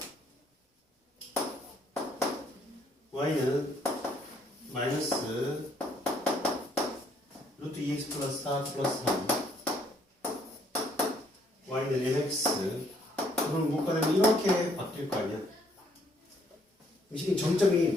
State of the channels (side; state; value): both; normal; correlation 0.66